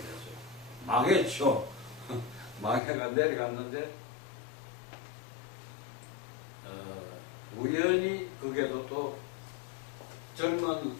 망했죠. 망해가 내려갔는데 우연히 그게도 또 젊은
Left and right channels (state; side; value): drops out; right; at 2.8 s